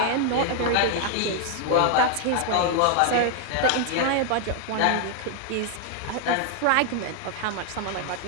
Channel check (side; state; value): both; different; correlation 0.00